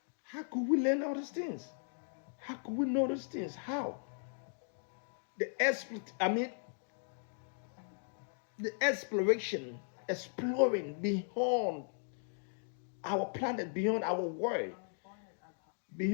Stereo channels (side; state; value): right; silent; digital silence